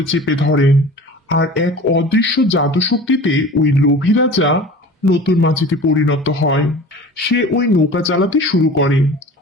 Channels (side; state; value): both; normal; correlation 0.39